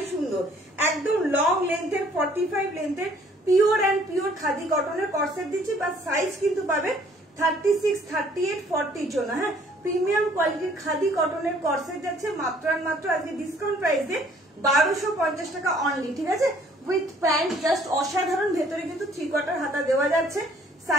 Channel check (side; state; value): both; normal; correlation 0.59